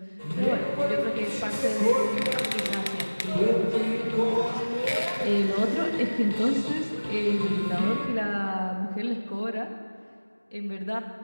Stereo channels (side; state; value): both; inverted; correlation -1.00